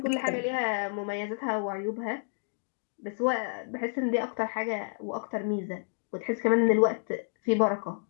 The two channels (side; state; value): right; silent; 58 dB below the other